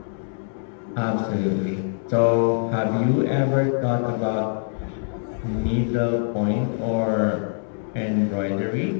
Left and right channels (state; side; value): silent; right; digital silence